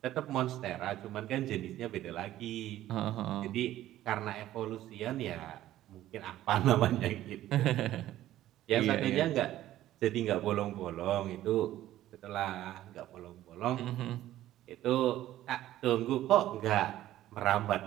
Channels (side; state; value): left; quieter; 13.8 dB